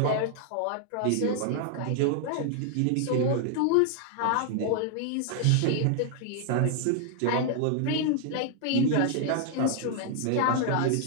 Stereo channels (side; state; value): both; different; correlation 0.00